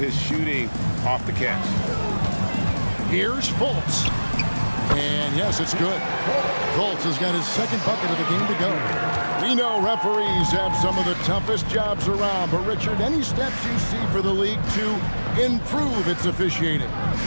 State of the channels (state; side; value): inverted; both; correlation -1.00